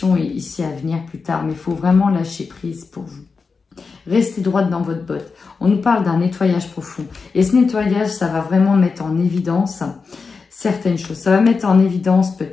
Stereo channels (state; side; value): quieter; right; 4.8 dB